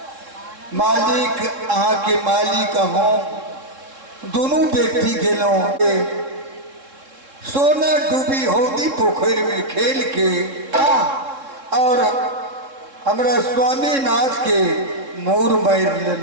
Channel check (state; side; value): late; left; 3.7 ms